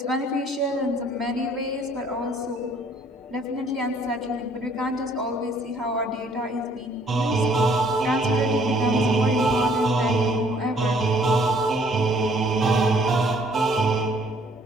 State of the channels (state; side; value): normal; both; correlation 0.61